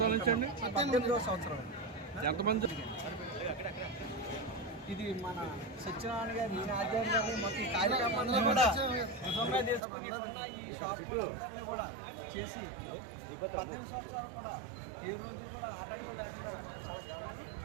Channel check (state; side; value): drops out; left; at 9.8 s